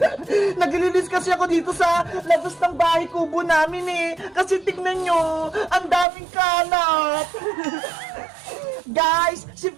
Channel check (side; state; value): left; drops out; at 6.1 s